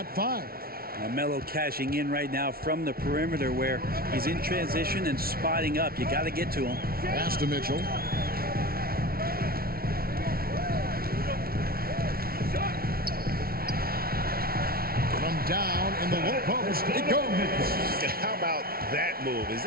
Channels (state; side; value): late; left; 0.44 ms